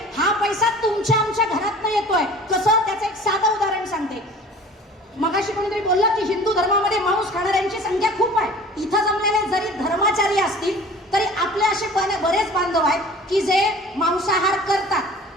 हा पैसा तुमच्या आमच्या घरातनं येतोय. कसं, त्याचं एक साधं उदाहरण सांगते. मगाशी कोणीतरी बोललं की हिंदू धर्मामध्ये मांस खाणाऱ्यांची संख्या खूप आहे. इथं जमलेले जरी धर्माचारी असतील तरी आपले असे बरेच बांधव आहेत की जे मांसाहार करतात.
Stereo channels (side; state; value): both; normal; correlation 0.44